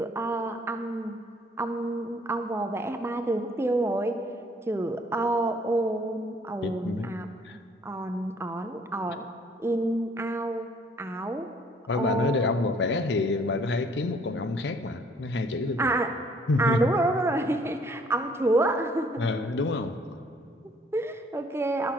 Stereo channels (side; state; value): both; normal; correlation 0.60